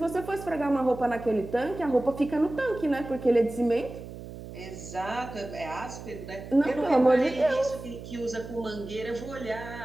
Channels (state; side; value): noise; right; hum, 12 dB below the sound